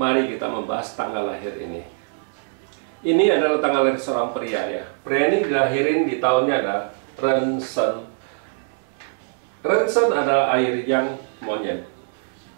kita membahas tanggal lahir ini. Ini adalah tanggal lahir seorang pria ya. Pria ini dilahirin di tahunnya ada Rensen. Rensen adalah air yang monyet.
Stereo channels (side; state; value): left; silent; digital silence